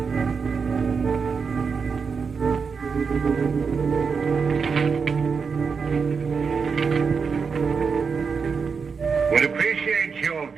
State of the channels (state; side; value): quieter; left; 5.5 dB